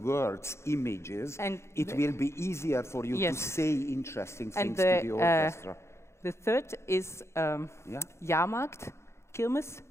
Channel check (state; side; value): late; right; 0.13 ms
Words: words, images, And it the- will be easier for you to Yes. say interesting And things to the orchestra. the third is Yeah? Jahrmarkt, Kirmes.